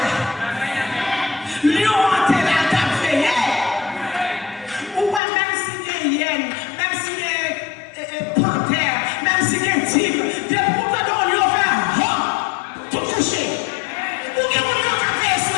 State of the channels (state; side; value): drops out; right; at 5.2 s